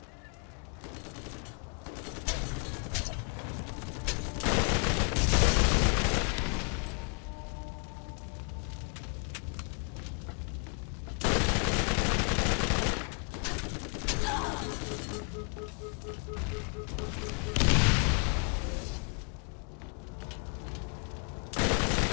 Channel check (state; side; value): quieter; right; 37.9 dB